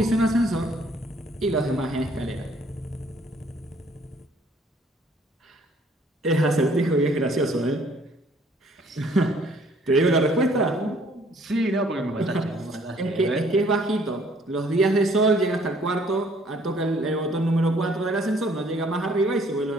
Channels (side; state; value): both; normal; correlation 0.61